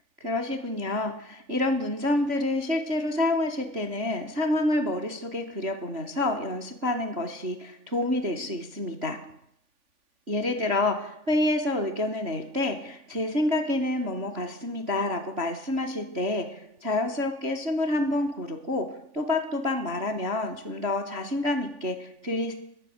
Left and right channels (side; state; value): left; late; 3.5 ms